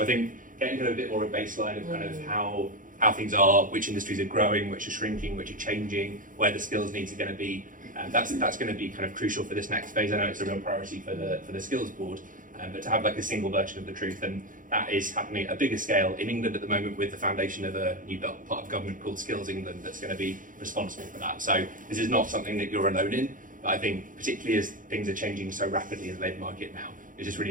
I think getting kind of a bit more of a baseline of kind of how things are, which industries are growing, which are shrinking, which are changing, where the skills needs are going to be, that's going to be kind of crucial for this next phase. I know it's a real priority for the skills board, but to have like a single version of the truth, and that is happening at a bigger scale in England at the moment with the foundation of a new part of government called Skills England that's going to be responsible for that. So this is not something that you're alone in, but I think particularly as things are changing so rapidly in the labour market now, it's just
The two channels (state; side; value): late; left; 0.39 ms